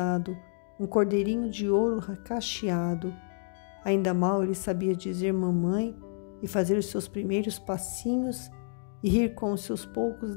um cordeirinho de ouro cacheado. Ainda mal ele sabia dizer mamãe e fazer os seus primeiros passinhos e rir com os seus poucos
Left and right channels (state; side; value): silent; right; digital silence